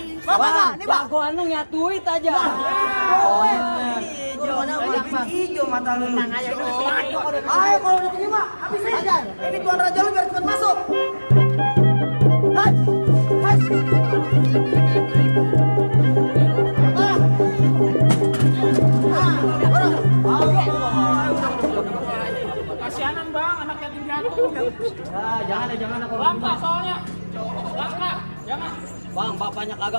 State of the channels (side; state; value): both; inverted; correlation -1.00